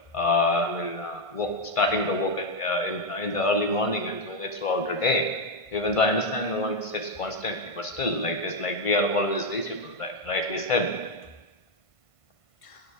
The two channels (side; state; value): right; late; 1.5 ms